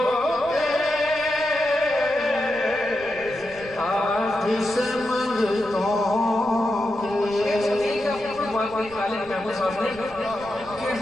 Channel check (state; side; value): noise; right; rumble, 21 dB below the sound